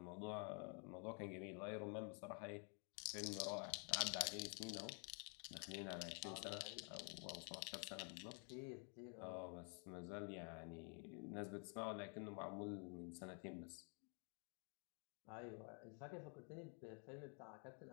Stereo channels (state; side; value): quieter; right; 39.7 dB